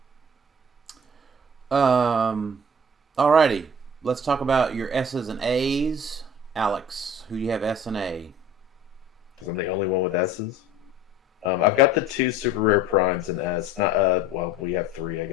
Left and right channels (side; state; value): both; normal; correlation 0.46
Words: Alrighty. Let's talk about your S's and A's. Alex, who do you have S and A? Because I'm the only one with S's. I've got the 2 super rare primes in S. Not we have 3, I